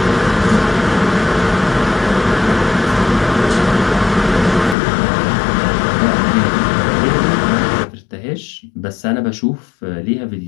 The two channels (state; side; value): drops out; right; at 4.8 s